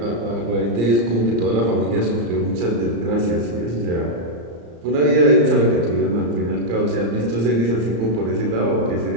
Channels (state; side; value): late; left; 34 ms